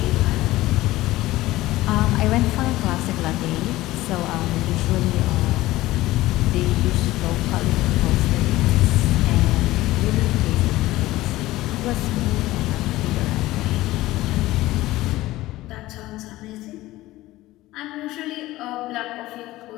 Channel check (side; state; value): right; quieter; 17.3 dB